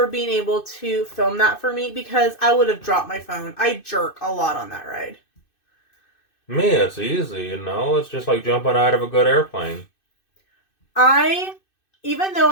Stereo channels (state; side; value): late; right; 2.6 ms